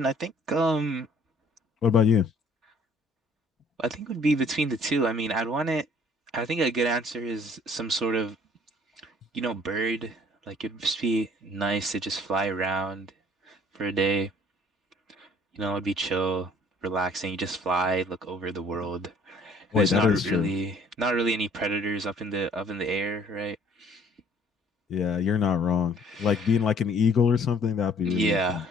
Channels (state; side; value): normal; both; correlation 0.57